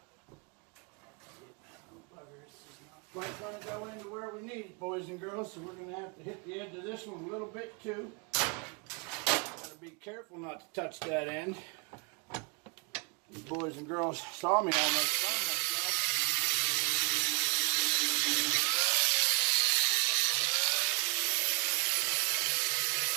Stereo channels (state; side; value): quieter; left; 31.2 dB